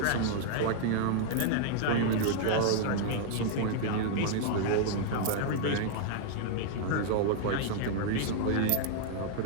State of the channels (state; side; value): different; both; correlation -0.01